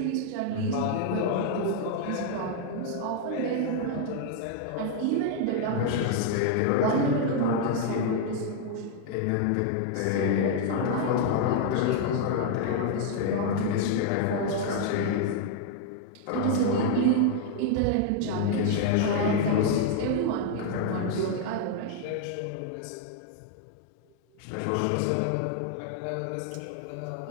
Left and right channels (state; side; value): different; both; correlation 0.00